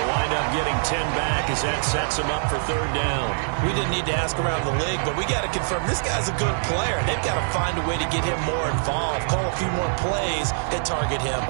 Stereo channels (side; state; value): left; silent; digital silence